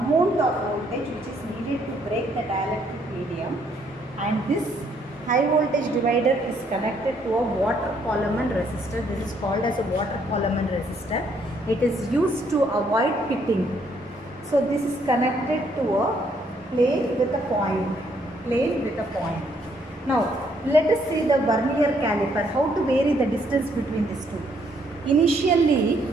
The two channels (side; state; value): both; normal; correlation 0.69